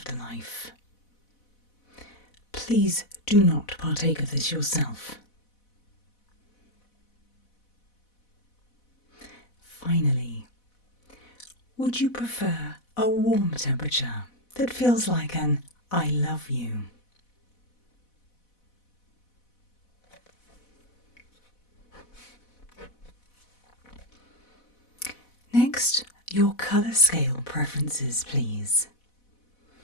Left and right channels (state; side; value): late; right; 4.1 ms